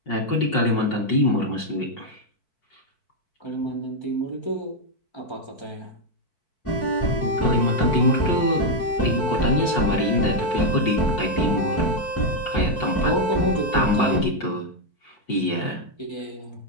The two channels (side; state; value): right; late; 4.6 ms